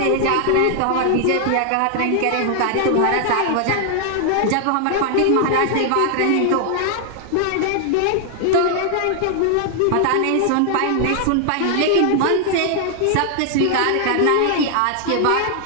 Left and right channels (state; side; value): different; both; correlation 0.00